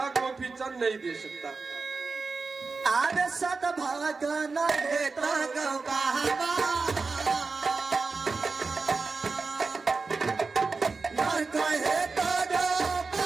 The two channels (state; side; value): quieter; left; 4.3 dB